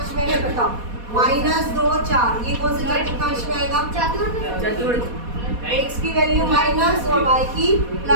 में है बताओ? -2 4, ये कौन से चतुर्थांश में आएगा? चतुर्थ x की वैल्यू माइनस और y की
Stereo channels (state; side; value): late; left; 4.2 ms